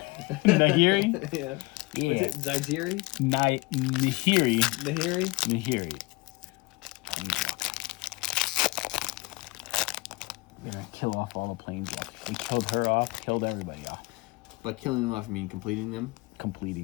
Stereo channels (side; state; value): right; quieter; 23.3 dB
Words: Nahiri? Yeah. Yeah. What's it? Zaiziri? Nahiri. Nahiri? Nahiri. We're gonna kill off all the planes. We killed her off, killed everybody off. By killing them off, you mean completing them?